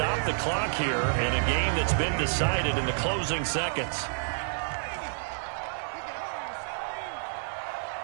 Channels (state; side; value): silent; left; 58 dB below the other